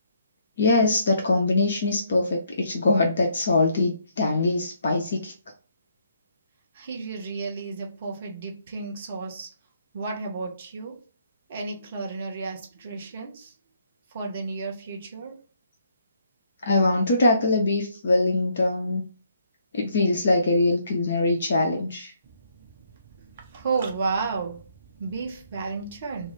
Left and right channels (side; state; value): both; inverted; correlation -0.70